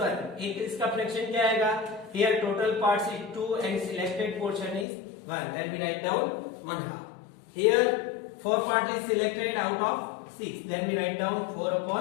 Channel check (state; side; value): drops out; right; at 4.9 s